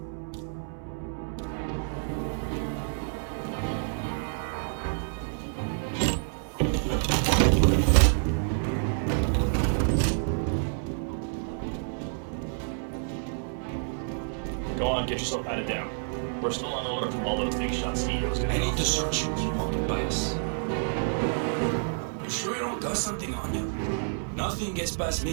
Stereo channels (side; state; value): left; silent; 59 dB below the other